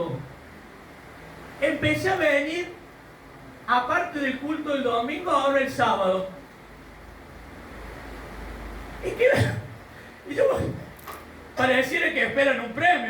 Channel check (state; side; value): identical; both; correlation 1.00